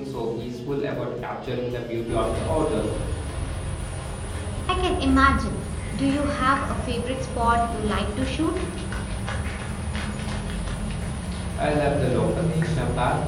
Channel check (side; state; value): both; identical; correlation 1.00